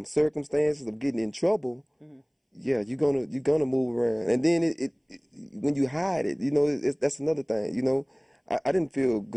circumstances of getting in trouble, yeah, you're gonna move around. And then when you hide it, that's another thing. I didn't feel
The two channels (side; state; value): both; identical; correlation 1.00